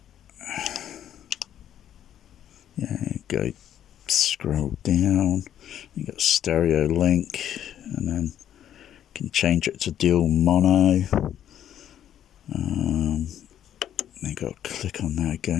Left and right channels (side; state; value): right; quieter; 10.5 dB